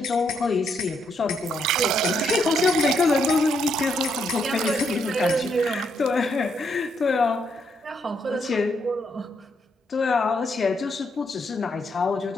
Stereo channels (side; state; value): both; normal; correlation 0.76